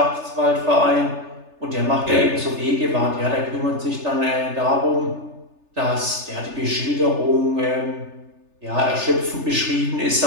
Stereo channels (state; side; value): late; left; 3.3 ms